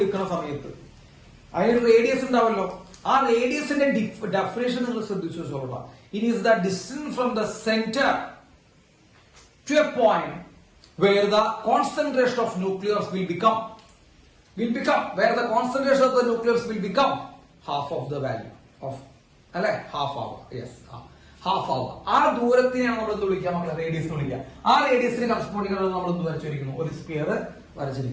സമയത്ത് അതിനൊരു റേഡിയസ് ഉണ്ടാവല്ലോ. ആ റേഡിയസിന്റെ ഡെഫിനേഷൻ നിങ്ങൾ ശ്രദ്ധിച്ചു വെച്ചോളാം. It is the distance from the centre to a point where the concentration of nucleus will become where the concentration of the nucleus will become half of the value of, അല്ലെ, half hour. Yes, half hour. ആ ദൂരത്തിനെയാണ് നമ്മൾ എന്ത് വിളിക്കുക? നമ്മൾ radius വിളിക്കുക. ആ റേഡിയസിന് corresponding നമ്മൾ എന്ത് വരച്ചിരിക്കുന്നു? ഒരു സ്പിയർ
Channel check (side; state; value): both; identical; correlation 1.00